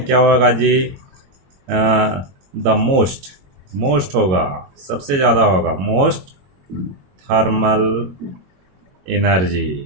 क्या होगा जी? द मोस्ट होगा, सबसे ज़्यादा होगा, मोस्ट थर्मल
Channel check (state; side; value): late; left; 22 ms